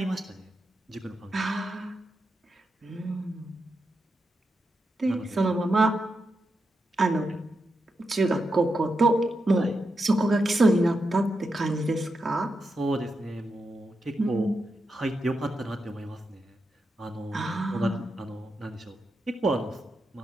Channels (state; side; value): normal; both; correlation 0.86